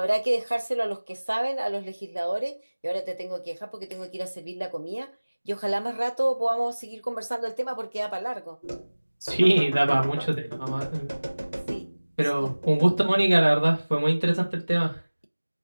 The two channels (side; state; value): both; inverted; correlation -1.00